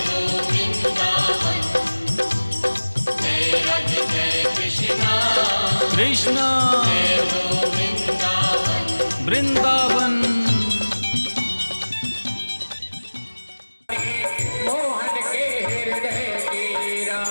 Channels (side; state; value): both; inverted; correlation -1.00